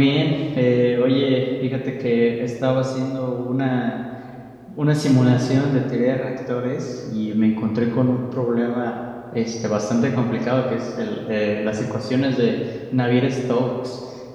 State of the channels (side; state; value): both; identical; correlation 1.00